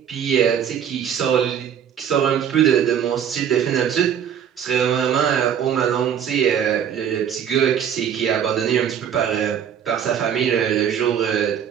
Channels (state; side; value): quieter; left; 8.7 dB